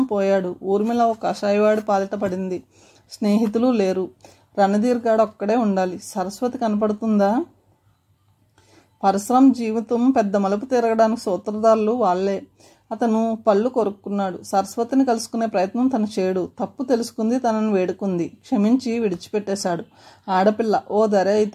పోయాడు. ఊర్మిళ ఓ కషాయవాడి పాలిట పడింది. స్నేహితులు లేరు. రణధీర్ గాడు ఒక్కడే ఉండాలి. సరస్వతి కనపడుతుందా? పరశురాం జీవితం పెద్ద మలుపు తిరగడానికి సూత్రధారులు వాళ్లే. అతను పళ్ళు కొరుక్కున్నాడు. సరస్వతిని కలుసుకునే ప్రయత్నం తను చేయడు. తప్పు తెలుసుకుంది, తనను వేడుకుంది, క్షమించి విడిచిపెట్టేశాడు. ఆడపిల్ల ఓ ధర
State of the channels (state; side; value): identical; both; correlation 1.00